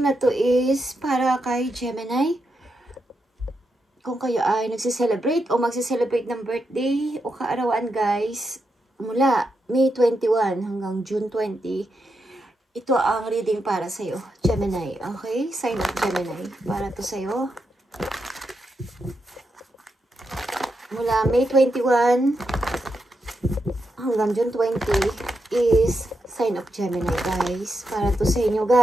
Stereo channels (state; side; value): normal; both; correlation 0.84